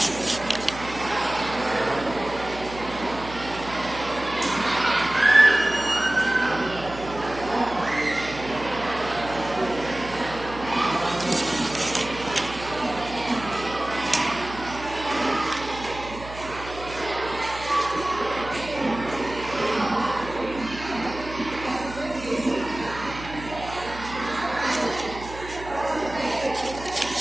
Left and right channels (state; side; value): noise; right; hum, 13 dB below the sound